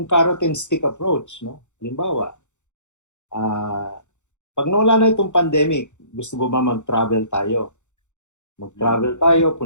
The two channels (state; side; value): late; right; 0.84 ms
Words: carrot and stick approach, no? Halimbawa, pag nawala na itong pandemic, gusto mo ba mag-travel tayo? Mag-travel tayo,